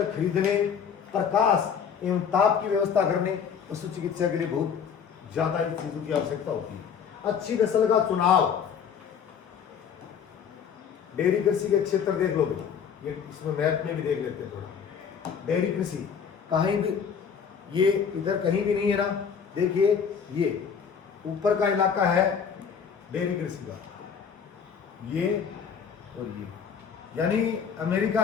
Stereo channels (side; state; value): right; quieter; 7.1 dB